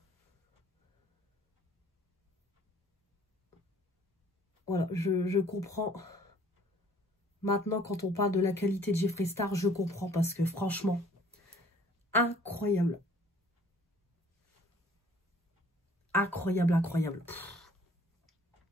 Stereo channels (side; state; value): both; normal; correlation 0.55